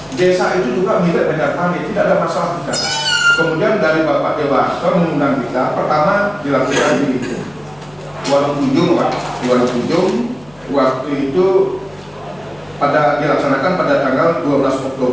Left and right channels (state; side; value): noise; left; hum, 27 dB below the sound